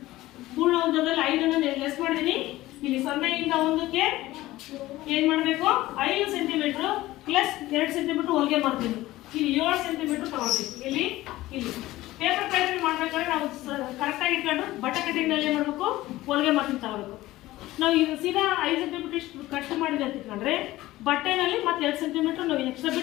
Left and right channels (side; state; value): right; quieter; 17.0 dB